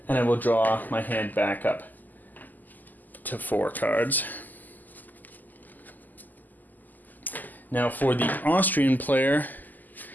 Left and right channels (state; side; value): late; right; 0.084 ms